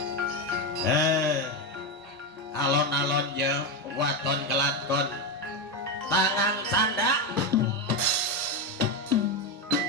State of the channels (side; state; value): both; normal; correlation 0.11